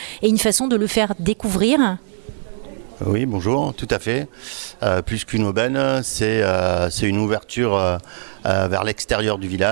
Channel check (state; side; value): silent; left; 60 dB below the other